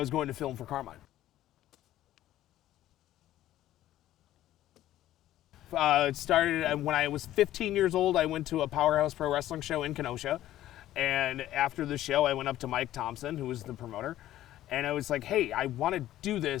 going to film for Carmine. It started when I was 15 years old. I went to a Powerhouse Pro Wrestling show in Kenosha, and after the show I went up to Mike Thompson, who was the promoter, and I was like, hey, I want to do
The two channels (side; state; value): right; quieter; 13.7 dB